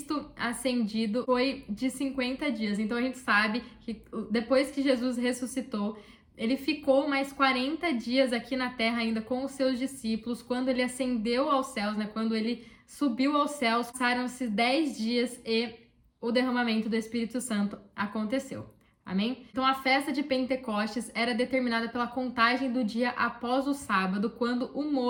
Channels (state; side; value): identical; both; correlation 1.00